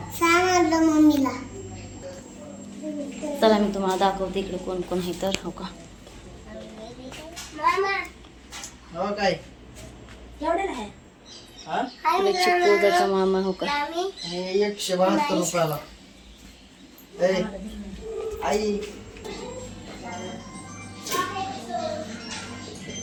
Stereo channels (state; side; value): identical; both; correlation 1.00